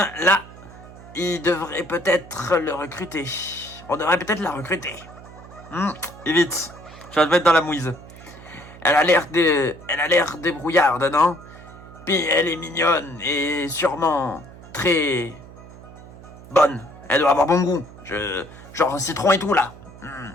là, il devrait peut-être le recruter. On devrait peut-être la recruter. Et vite, tu vas te mettre dans la mouise. Elle a l'air débrouillarde, non? Puis elle est mignonne et sûrement très bonne. Elle doit avoir bon goût. Genre citron et tout là.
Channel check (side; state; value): right; noise; hum, 18 dB below the sound